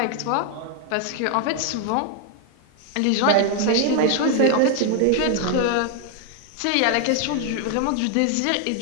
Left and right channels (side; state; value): both; different; correlation 0.01